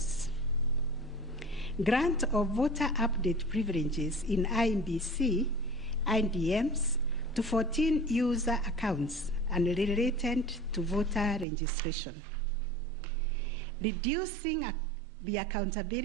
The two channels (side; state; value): left; drops out; at 11.5 s